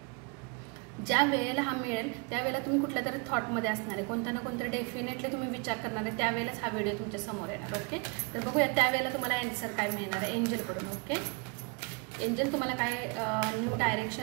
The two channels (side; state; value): left; quieter; 31.9 dB